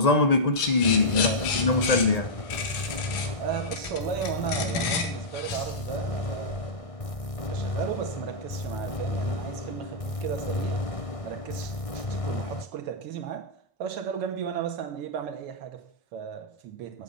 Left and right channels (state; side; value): late; right; 1.6 ms